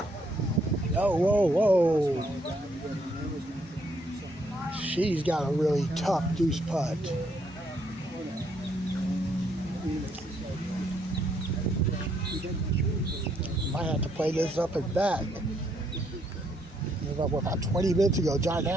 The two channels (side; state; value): both; normal; correlation 0.72